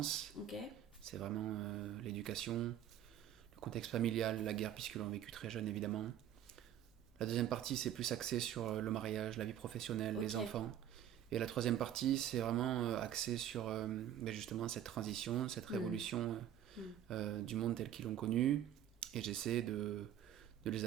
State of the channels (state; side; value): quieter; left; 10.8 dB